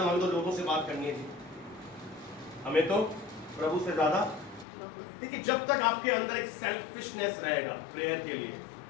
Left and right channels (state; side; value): drops out; right; at 4.7 s